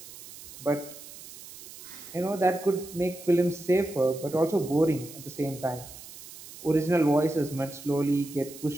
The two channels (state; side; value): noise; right; hiss, 16 dB below the sound